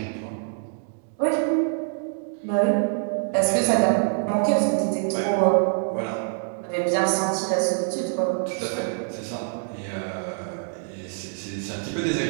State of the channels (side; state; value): left; silent; 62 dB below the other